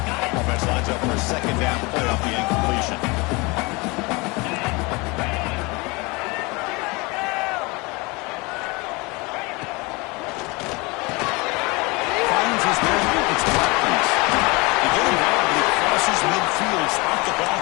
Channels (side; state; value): right; quieter; 26.0 dB